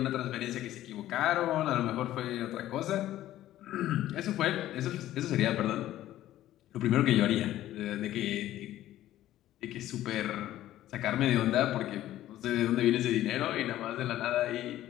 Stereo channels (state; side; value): quieter; right; 13.7 dB